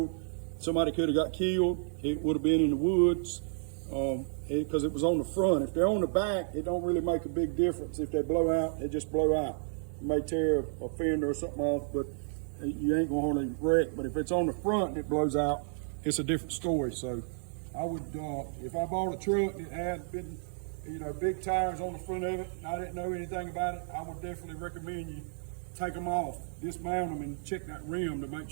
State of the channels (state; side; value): silent; left; 57 dB below the other